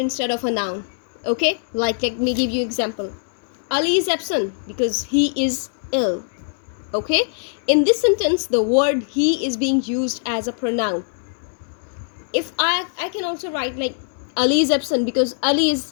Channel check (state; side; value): silent; right; digital silence